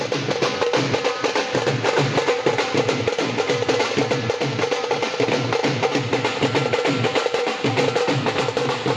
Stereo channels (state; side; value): identical; both; correlation 1.00